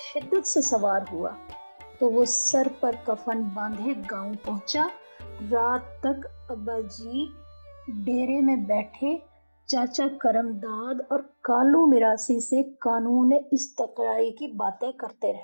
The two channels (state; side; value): inverted; both; correlation -1.00